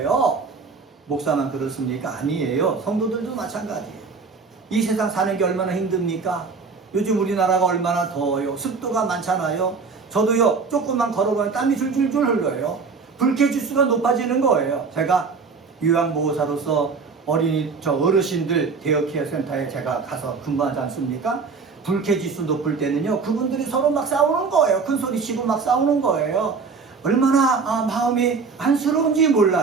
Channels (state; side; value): quieter; left; 4.9 dB